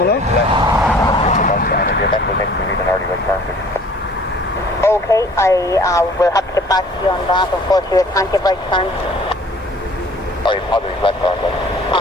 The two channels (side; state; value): both; normal; correlation 0.52